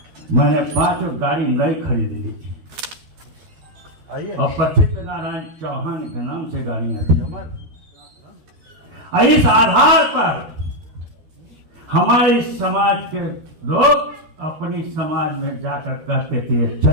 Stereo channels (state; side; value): late; left; 13 ms